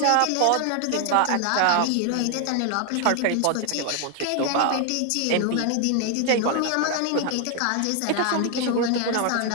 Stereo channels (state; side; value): different; both; correlation 0.00